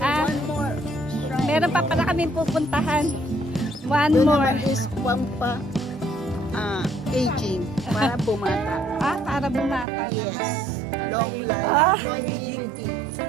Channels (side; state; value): left; drops out; at 9.9 s